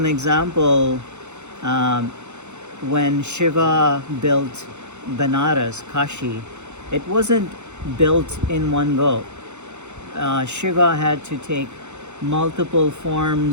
example, when Shiva built Banaras, Kashi, it wasn't built in one go. Shiva had to take multiple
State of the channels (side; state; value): left; late; 0.83 ms